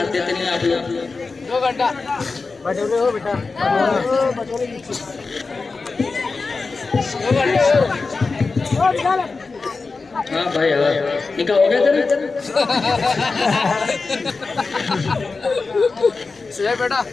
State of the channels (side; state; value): right; quieter; 4.1 dB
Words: देते नहीं आप लोग। 2 घंटा बटोरे हो बेटा, हाँ भाई हाँ, निकाह हो गया तेरा? शुएब बेटा,